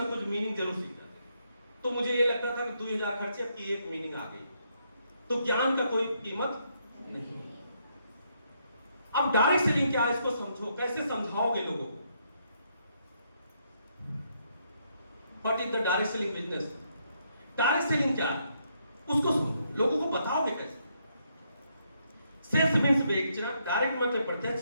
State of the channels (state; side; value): inverted; both; correlation -0.75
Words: कुछ मीनिंग जरूर सीख जाते। तो मुझे ये लगता था कि 2000 खर्चे की एक मीनिंग आ गई, तो ज्ञान का कोई कीमत नहीं। अब डायरेक्ट सेलिंग क्या है इसको समझो। कैसे समझाओगे लोगों को? What is the direct selling business? Direct selling क्या है उसको समझो, लोगों को बताओगे कैसे। सेल्स मींस बेचना, डायरेक्ट मतलब प्रत्यक्ष,